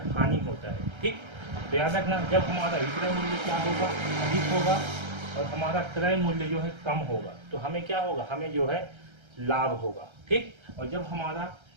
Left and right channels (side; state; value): left; late; 1.3 ms